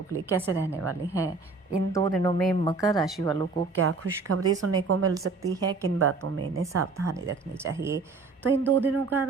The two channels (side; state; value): left; quieter; 4.1 dB